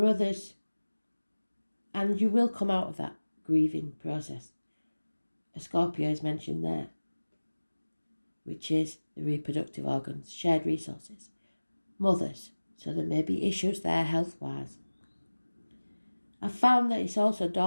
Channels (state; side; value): inverted; both; correlation -1.00